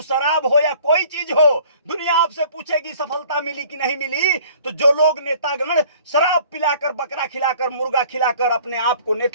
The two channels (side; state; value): both; inverted; correlation -0.52